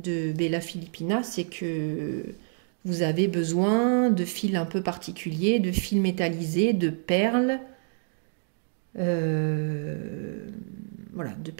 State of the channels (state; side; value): silent; left; 60 dB below the other